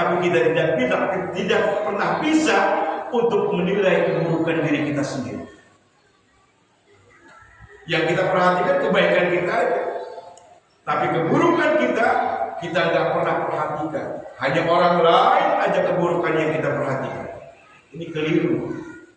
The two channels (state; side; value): identical; both; correlation 1.00